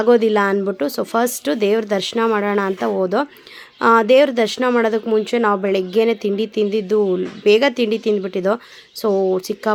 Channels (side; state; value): both; identical; correlation 1.00